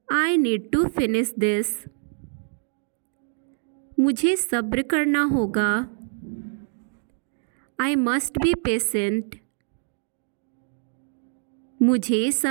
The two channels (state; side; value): silent; left; 59 dB below the other